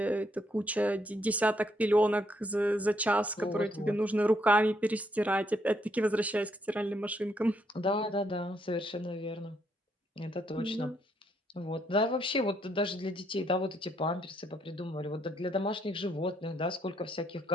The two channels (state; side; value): normal; both; correlation 0.73